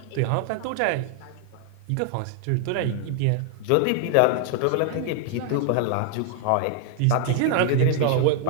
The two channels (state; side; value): different; both; correlation 0.00